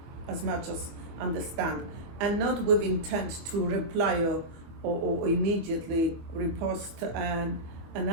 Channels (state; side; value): late; left; 24 ms